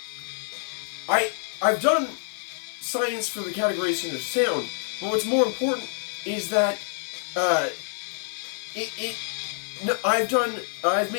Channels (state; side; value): silent; right; 60 dB below the other